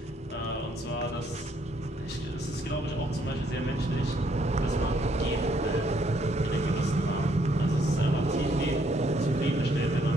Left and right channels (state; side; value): normal; both; correlation 0.69